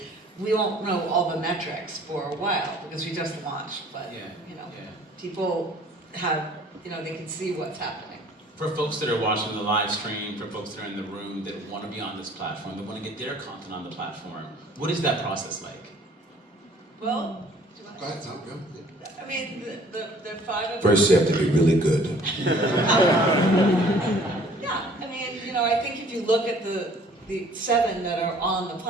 We won't know all the metrics for a while because we just launched, but people have, they can see what's happening. For folks that are watching the live stream, for folks that are in the room that want to be on this platform, that want to get their content on the platform, what is that process like? Well, Go ahead, Tom, go. I mean, the 5 of First, you have to be really good. Yeah, I mean, I think if you look at the 7 that are on the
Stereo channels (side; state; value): both; normal; correlation 0.54